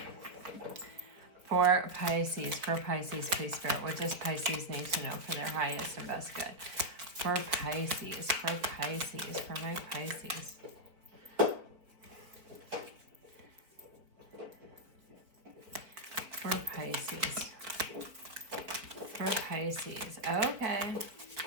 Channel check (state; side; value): late; left; 4.5 ms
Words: For Pisces, please, Spirit, what does Pisces need to know for their highest and best good? For Pisces, for my Pisces. For Pisces. Okay.